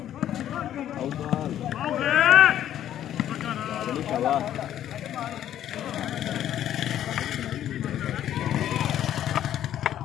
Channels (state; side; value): quieter; right; 11.3 dB